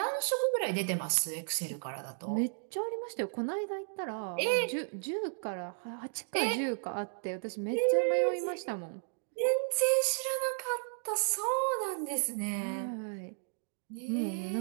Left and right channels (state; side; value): silent; left; digital silence